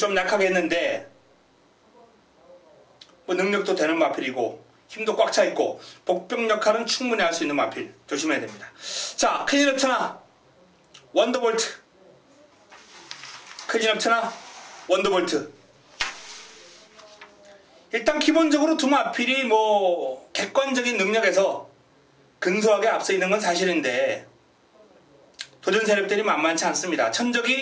약하게 했는데 능력도 되는 마필이고 힘도 꽉 차 있고 복병 역할은 충분히 할 수 있는 마필 조심해야 됩니다. 자 클린업 천하 원더볼트 클린업 천하 원더볼트 일단 기본적으로 두 마필이 객관적인 능력에서 근소하게 앞서 있는 건 사실인데 도전 세력들이 만만치 않습니다.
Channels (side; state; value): both; identical; correlation 1.00